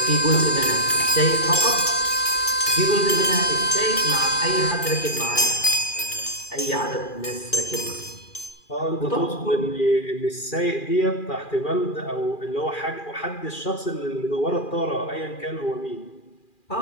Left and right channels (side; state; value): right; late; 2.4 ms